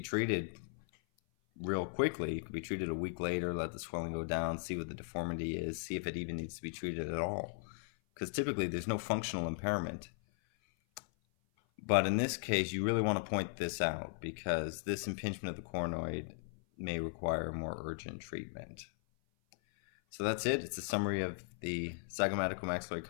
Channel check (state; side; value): silent; right; 53 dB below the other